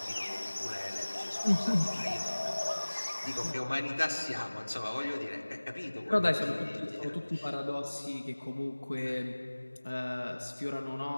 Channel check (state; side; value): inverted; both; correlation -1.00